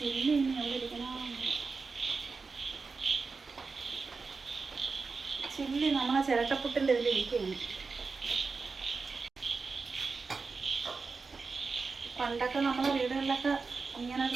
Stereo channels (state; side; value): quieter; left; 4.5 dB